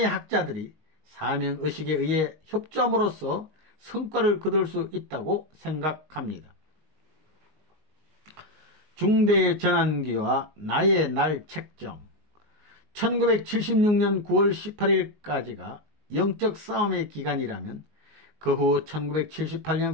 학자들이 사명의식에 의해 협조함으로써 성과를 거둘 수 있다고 생각합니다. 중대 전환기와 나의 날 책정 1976년 9월 18일까지가 영적 싸움의 기간이라면 그 후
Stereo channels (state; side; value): late; left; 19 ms